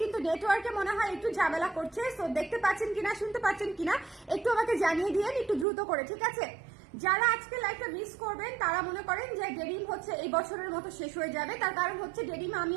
কিন্তু নেটওয়ার্কে মনে হয় একটু ঝামেলা করছে। সো দেখতে পাচ্ছেন কিনা, শুনতে পাচ্ছেন কিনা একটু আমাকে জানিয়ে দিয়েন, একটু দ্রুত করে, ঠিক আছে? যারা আজকে লাইভটা মিস করবেন তারা মনে করেন যে ডেনিম হচ্ছে এই বছরের মতো শেষ হয়ে যাবে, তার কারণ হচ্ছে ডেনিম আমি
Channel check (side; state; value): left; drops out; at 5.7 s